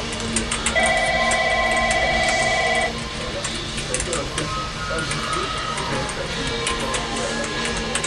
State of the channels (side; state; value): both; identical; correlation 1.00